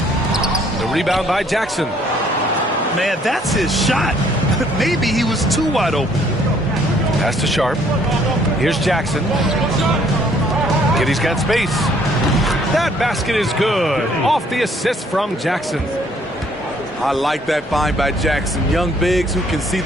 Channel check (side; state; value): both; normal; correlation 0.63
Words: The rebound by Jackson. Man, that's his shot. Maybe he was too wide open. Pass to Sharp. Here's Jackson. Giddey's got space. That basket is good. Off the assist from Jackson. I like that find by Jackson. Young bigs who can see